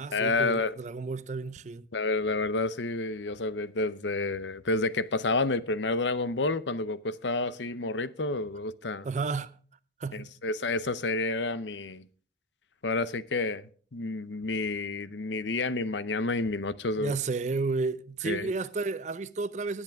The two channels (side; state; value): both; normal; correlation 0.06